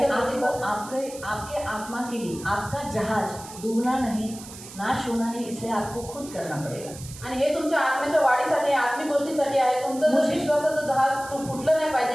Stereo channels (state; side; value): noise; right; hiss, 15 dB below the sound